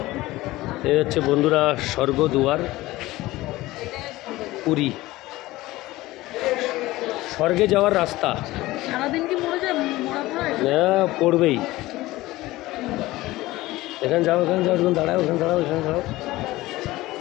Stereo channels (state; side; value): quieter; right; 18.2 dB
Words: এই হচ্ছে বন্ধুরা স্বর্গদুয়ার পুরী। স্বর্গে যাওয়ার রাস্তা। হ্যাঁ, পড়বেই। এখানে যাও, এখানে যাও, এখানে দাঁড়াও, এখানে দাঁড়াও, এখানে দাঁড়াও,